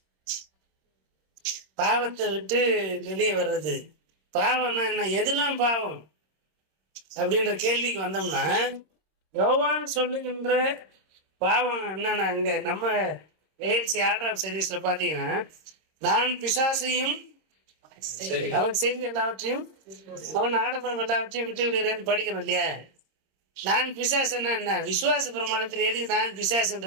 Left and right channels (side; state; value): left; late; 26 ms